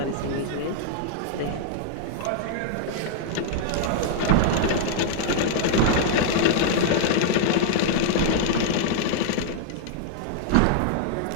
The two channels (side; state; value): both; different; correlation -0.01